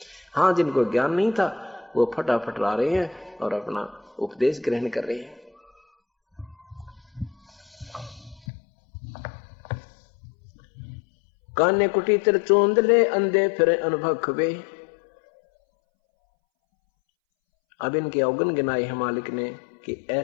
हाँ, जिनको ज्ञान नहीं था वो फटाफट ला रहे हैं और अपना उपदेश ग्रहण कर रहे हैं। काने कुटी तिर चोंद ले, अंधे फिरे अनुभवे। अब इनके अवगुण गिनाए हैं मालिक ने कि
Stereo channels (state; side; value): drops out; right; at 8.4 s